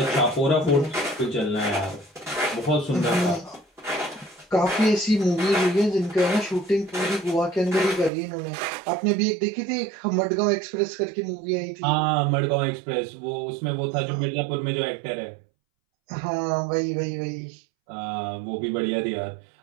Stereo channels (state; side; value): drops out; left; at 8.1 s